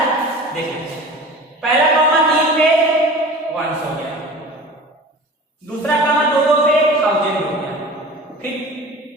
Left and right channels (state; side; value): normal; both; correlation 0.39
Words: देख लेते हैं। पहला कॉमा 3 पे 1 हो गया, दूसरा कॉमा 2 पे 1000 हो गया, फिर